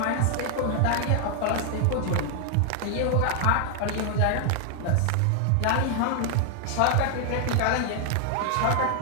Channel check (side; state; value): both; different; correlation 0.00